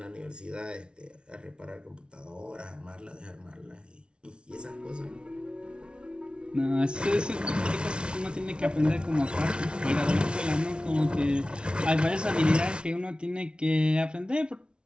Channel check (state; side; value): late; left; 0.057 ms